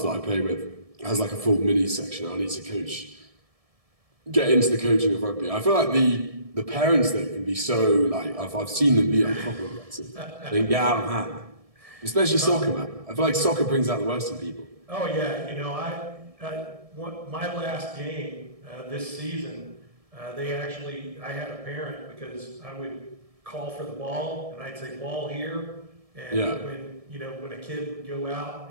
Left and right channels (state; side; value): late; left; 1.7 ms